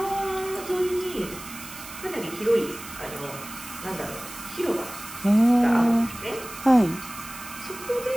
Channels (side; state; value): right; noise; hiss, 13 dB below the sound